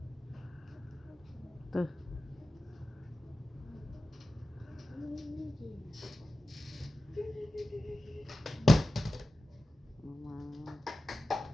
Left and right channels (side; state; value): both; normal; correlation 0.93